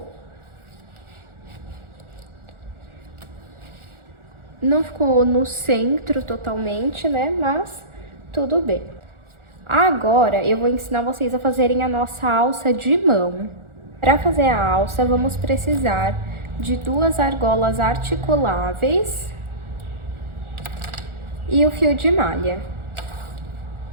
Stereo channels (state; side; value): late; left; 1.4 ms